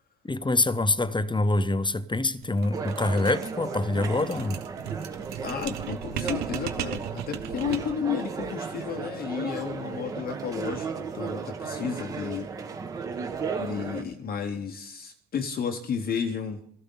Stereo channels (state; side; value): normal; both; correlation 0.50